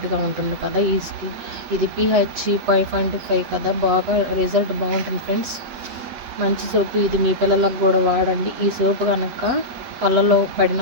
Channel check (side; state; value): left; late; 8.1 ms